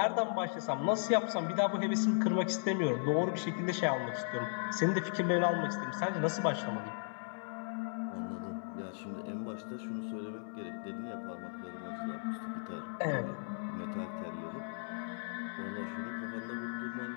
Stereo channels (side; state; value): right; silent; 54 dB below the other